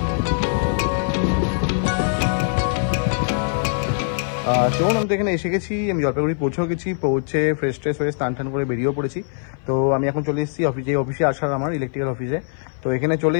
চলুন, আমি তো এখানে এসে গেছি, আমি জলপাইগুড়ি পৌঁছেও গেছি। পৌঁছে ফ্রেশ ট্রেশ হয়ে স্নান টান করে বেরিয়েও পড়েছি। তো আমি এখন চলে এসেছি অফিসে, অফিসে আসার আমার ইলেকট্রিক্যাল অফিসে। তো এখানে চলে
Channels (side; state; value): right; silent; 58 dB below the other